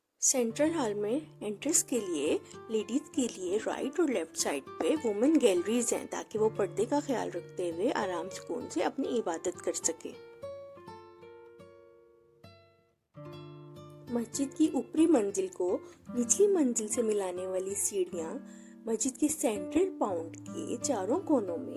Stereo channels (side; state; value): both; identical; correlation 1.00